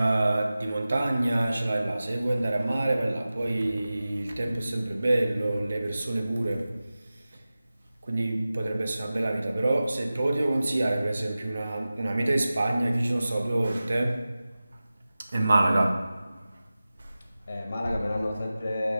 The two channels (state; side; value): inverted; both; correlation -0.96